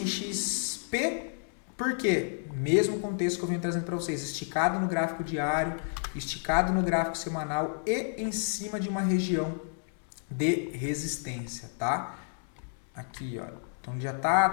XP, por quê? Mesmo contexto que eu venho trazendo para vocês, esticado no gráfico diário, esticado no gráfico semanal e em cima de uma região de resistência, tá? Aqui, ó. Então, já está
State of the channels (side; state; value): right; silent; digital silence